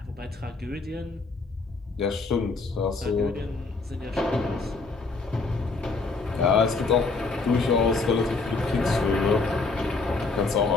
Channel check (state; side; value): quieter; right; 3.9 dB